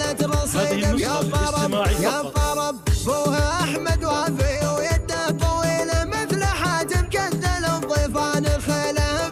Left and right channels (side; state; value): both; identical; correlation 1.00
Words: رصيد. يا طرب يا طرب بوها احمد وافي ويده طويله مثل حاتم كذل الضيفان الخيله